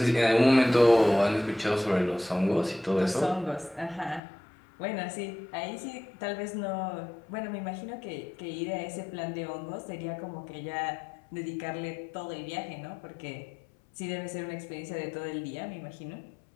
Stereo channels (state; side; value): drops out; right; at 4.2 s